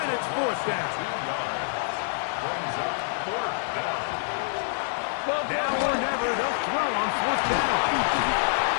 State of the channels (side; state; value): right; silent; 60 dB below the other